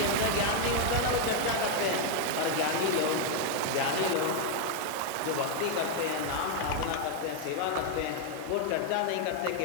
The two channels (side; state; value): both; different; correlation 0.00